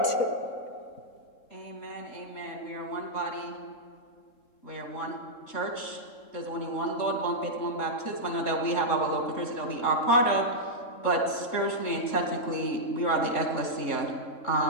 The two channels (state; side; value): late; right; 3.7 ms